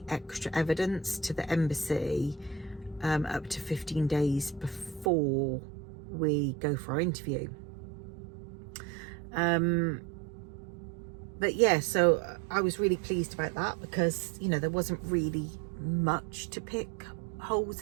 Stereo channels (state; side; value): drops out; left; at 5.1 s